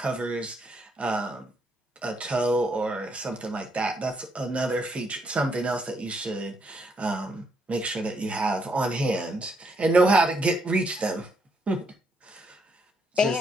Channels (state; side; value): normal; both; correlation 0.75